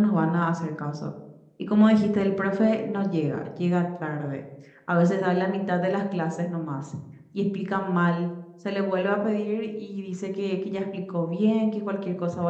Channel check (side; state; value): both; identical; correlation 1.00